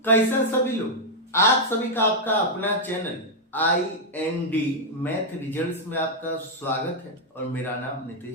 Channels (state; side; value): normal; both; correlation -0.02